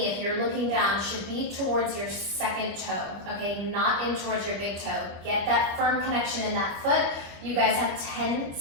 if you're looking down, should be towards your second toe, okay? Not in towards your big toe. Get that firm connection in that foot. You guys have 10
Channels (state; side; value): late; left; 25 ms